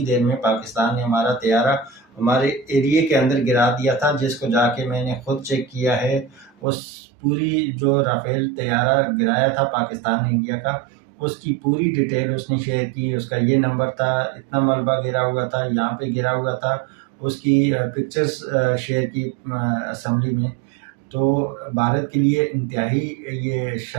دیر میں پاکستان نے ہمارا طیارہ ہمارے ایریے کے اندر گرا دیا تھا، جس کو جا کے میں نے خود چیک کیا ہے۔ اس پوری جو رافیل طیارہ گرایا تھا پاکستان نے انڈیا کا، اس کی پوری ڈیٹیل اس نے شیئر کی، اس کا یہ نمبر تھا، اتنا ملبہ گرا ہوا تھا، یہاں پہ گرا ہوا تھا، اس کی پکچرز شیئر کی اسمبلی میں۔ تو بھارت کے لیے انتہائی یہ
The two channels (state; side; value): drops out; left; at 6.5 s